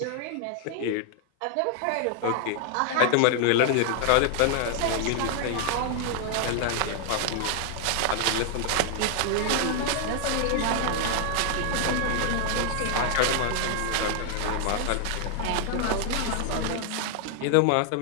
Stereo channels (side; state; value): both; different; correlation 0.00